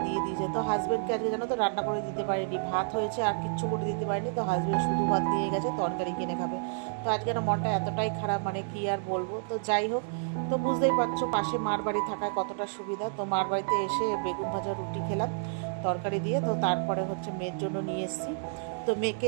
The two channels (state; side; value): silent; left; digital silence